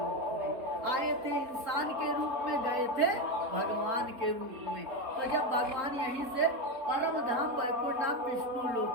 में आए थे, इंसान के रूप में गए थे, भगवान के रूप में। तो जब भगवान यहीं से परम धाम वैकुंठ धाम विष्णु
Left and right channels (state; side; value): late; left; 3.8 ms